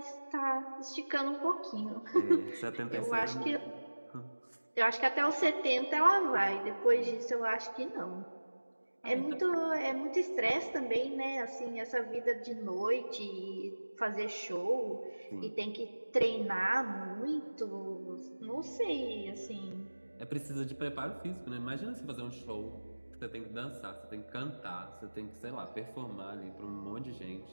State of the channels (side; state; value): both; inverted; correlation -1.00